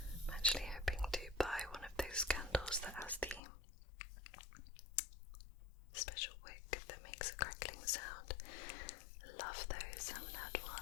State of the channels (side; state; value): right; drops out; at 3.4 s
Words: I'm actually hoping to buy one of those candles that has the special wick that makes a crackling sound. I love those. I haven't had